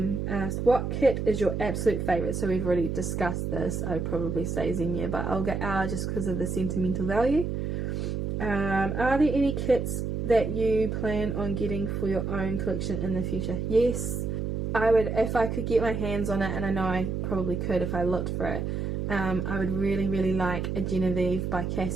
asked, what kit is your absolute favourite? So we've already discussed this. I would probably say Xenia, but I'll get R just because of the sentimental value. Are there any kits that you plan on getting for your own collection in the future? Yes, I would, if I could get my hands on it, and I know I probably could if I looked for it. I would really like a Genevieve by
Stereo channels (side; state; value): right; noise; hum, 2 dB below the sound